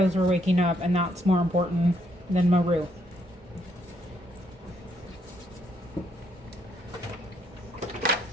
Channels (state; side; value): normal; both; correlation 0.73